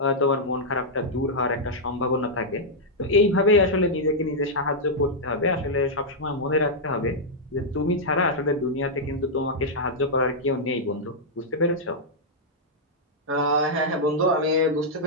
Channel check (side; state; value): both; normal; correlation -0.06